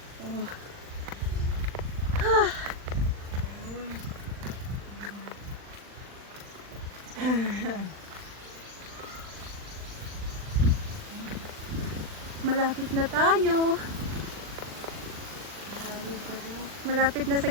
Oh. Malapit na tayo. Malapit na sa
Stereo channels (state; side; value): late; left; 39 ms